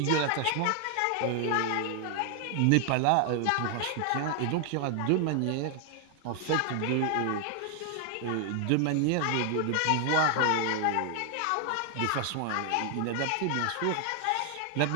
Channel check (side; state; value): both; different; correlation 0.00